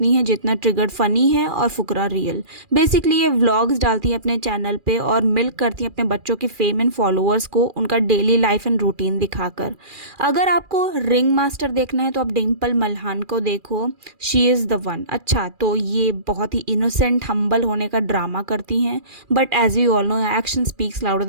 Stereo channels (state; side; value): late; left; 2.4 ms